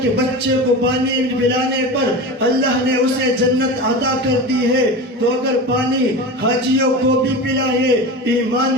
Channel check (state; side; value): normal; both; correlation 0.28